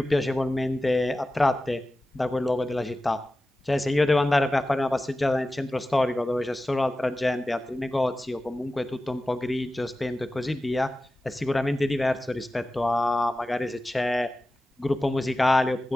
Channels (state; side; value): normal; both; correlation 0.95